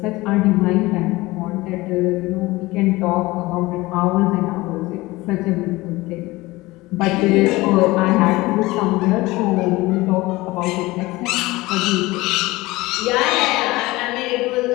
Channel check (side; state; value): right; quieter; 20.3 dB